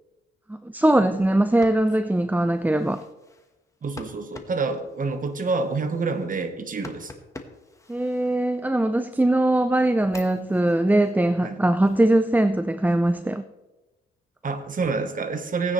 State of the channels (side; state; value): both; normal; correlation 0.89